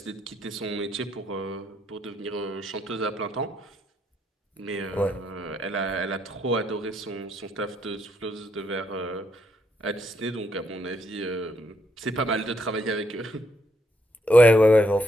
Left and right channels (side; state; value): both; normal; correlation 0.75